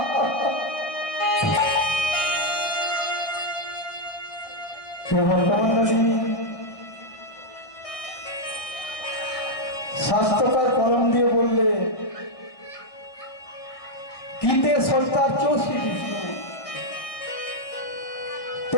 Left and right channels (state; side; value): late; right; 1.7 ms